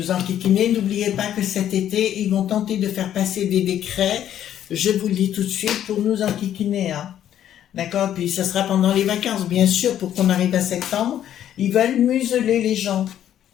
enquiquiner. N'oubliez pas que cet été, ils vont tenter de faire passer des décrets, je vous le dis tout de suite, pour nous enquiquiner. Hein. D'accord? Puis ça sera pendant les vacances, bien sûr, pour qu'on arrive à septembre. Ils veulent museler les gens.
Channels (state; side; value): quieter; right; 10.8 dB